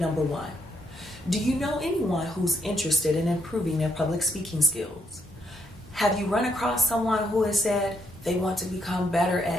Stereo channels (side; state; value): both; normal; correlation 0.75